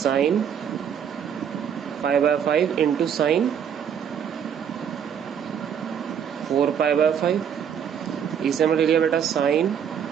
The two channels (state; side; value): quieter; left; 8.2 dB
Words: pi by 5 into sine 4 pi by 5। इसे हमने ले लिया बेटा sine